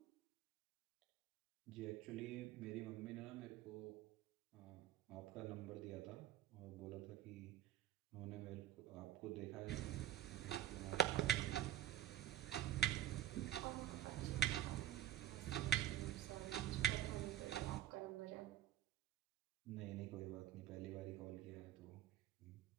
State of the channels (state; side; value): quieter; left; 11.8 dB